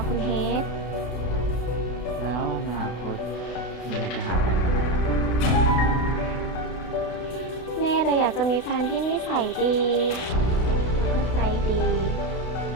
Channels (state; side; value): late; right; 32 ms